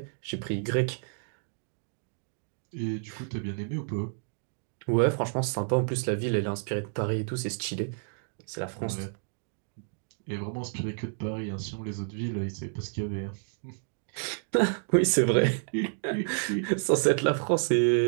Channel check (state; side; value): silent; left; digital silence